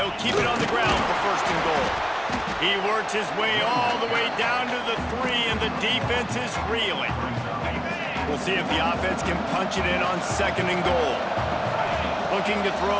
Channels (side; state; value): both; identical; correlation 1.00